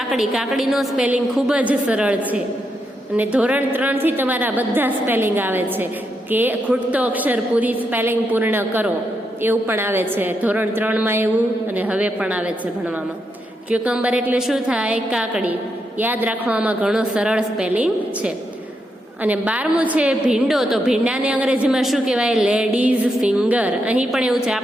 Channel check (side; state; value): both; normal; correlation 0.82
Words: કાકડીનો સ્પેલિંગ ખૂબ જ સરળ છે અને ધોરણ 3 થી તમારા બધા સ્પેલિંગ આવે છે કે ખૂટતો અક્ષર પૂરી સ્પેલિંગ પૂર્ણ કરો, એવું પણ આવે છે ધોરણ 3માં એવું, અને હવે પણ આવે છે ભણવામાં. ક્યુકમ્બર એટલે શું થાય? કાકડી. યાદ રાખવામાં ઘણો સરળ સ્પેલિંગ છે. અને 12મું છે ભીંડો. તો ભીંડાને અંગ્રેજીમાં શું કહેવાય? Ladies finger. અહીં પણ એવું છે,